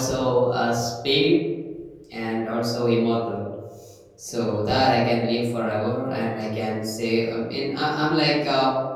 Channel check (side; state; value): both; identical; correlation 1.00